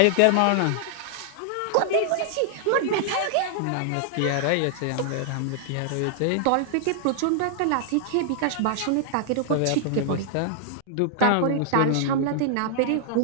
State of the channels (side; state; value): both; different; correlation -0.01